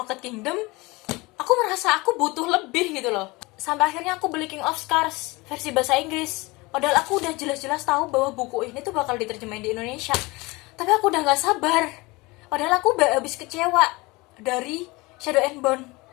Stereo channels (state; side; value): quieter; right; 23.6 dB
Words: Kingdom, aku merasa aku butuh lebih gitu loh. Sampai akhirnya aku beli King of Scars versi bahasa Inggris. Padahal aku udah jelas-jelas tahu bahwa buku ini tuh bakal diterjemahin di Indonesia. Tapi aku udah gak sabar. Padahal aku udah habis kecewa dari Shadow and Bone,